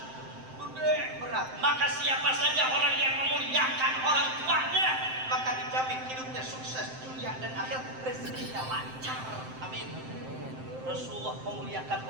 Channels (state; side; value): late; left; 7.7 ms